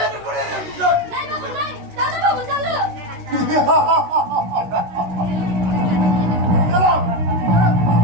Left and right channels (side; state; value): left; late; 16 ms